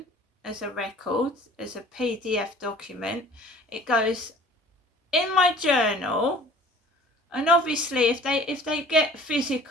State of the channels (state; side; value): normal; both; correlation 0.48